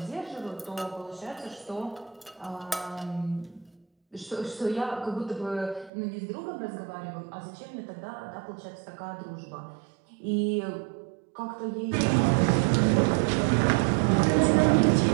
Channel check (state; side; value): drops out; left; at 5.9 s